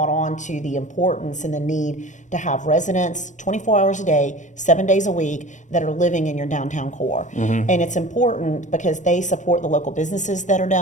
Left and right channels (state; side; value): late; right; 0.35 ms